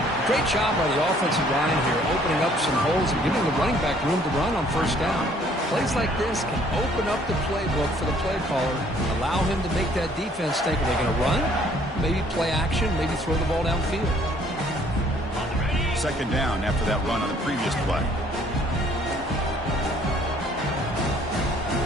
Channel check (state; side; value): normal; both; correlation 0.60